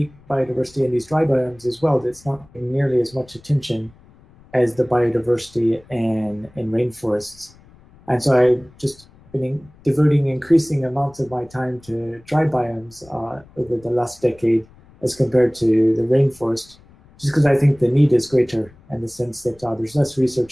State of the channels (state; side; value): noise; left; rumble, 26 dB below the sound